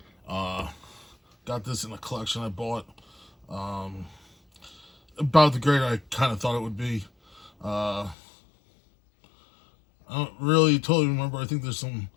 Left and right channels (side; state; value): right; drops out; at 8.2 s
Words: Got this in a collection I bought. About the grade I kind of thought it would be. I don't really totally remember. I think there's some